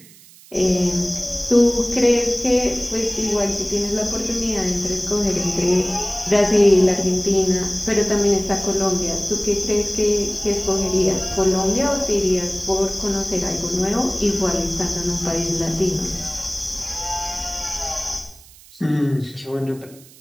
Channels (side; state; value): right; noise; hiss, 23 dB below the sound